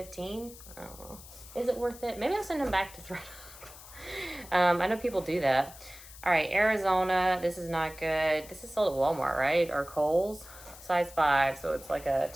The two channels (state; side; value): noise; left; hiss, 17 dB below the sound